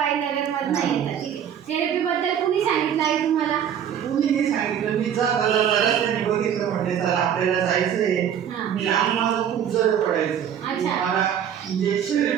नगरमधनं येतात. ठीक आहे. थेरपीबद्दल कुणी सांगितलं आई तुम्हाला? कुणीही सांगितलं, मी जाता जाता रस्त्याने बघितलं, म्हणजे चला आपल्याला जायचंय. हां. मी अंग माझं खूप जड पडायचं. अच्छा. मला म्हणजे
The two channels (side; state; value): left; quieter; 9.0 dB